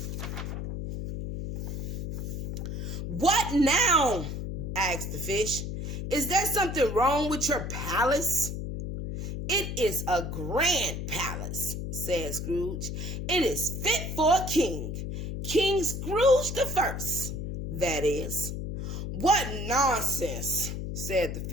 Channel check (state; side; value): noise; left; hum, 5 dB below the sound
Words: What now? Asked the fish. Is there something wrong with your palace? It is a grand palace, said Scrooge. It is fit for a king. King Scrooge the First, that is. What nonsense, said the